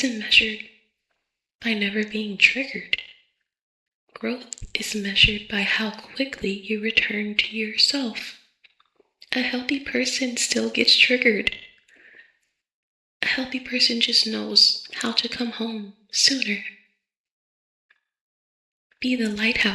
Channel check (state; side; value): identical; both; correlation 1.00